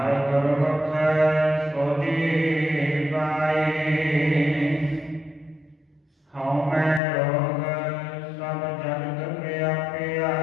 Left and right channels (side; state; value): right; drops out; at 7.0 s